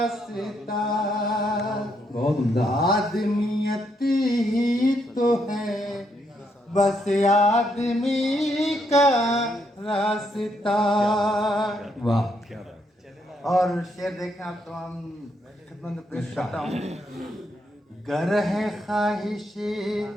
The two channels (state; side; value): normal; both; correlation 0.76